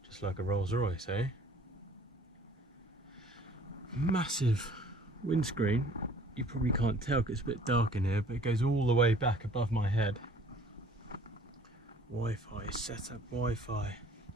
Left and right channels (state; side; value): normal; both; correlation 0.53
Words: Just like a Rolls Royce, eh? Massive windscreen. You probably can't tell because it's a bit dark in here, but it goes all the way back above my head. Wi-Fi, setup Wi-Fi.